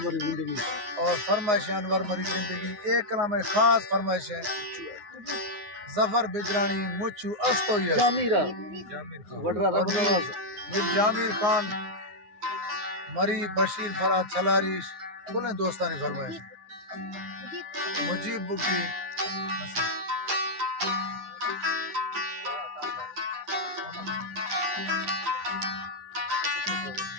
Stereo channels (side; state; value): left; late; 9.6 ms